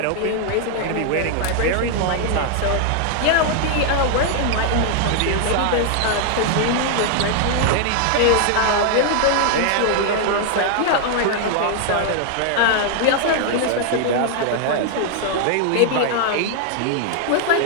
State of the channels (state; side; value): different; both; correlation 0.00